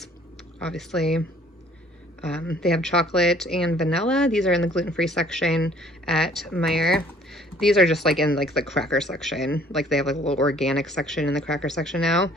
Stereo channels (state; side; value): normal; both; correlation 0.57